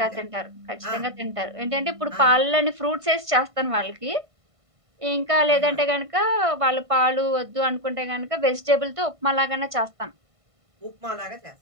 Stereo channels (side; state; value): left; late; 1.5 ms